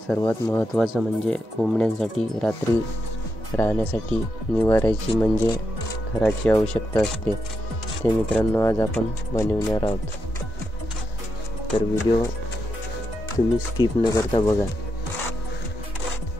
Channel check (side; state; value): both; normal; correlation 0.84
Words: सर्वात महत्त्वाचं म्हणजे कोंबड्यांसाठी रात्री राहण्यासाठी निवाऱ्याची म्हणजे घराची आवश्यकता असते. ते मित्रांनो आज आपण बनवणार आहोत, तर व्हिडिओ तुम्ही स्किप न करता बघा.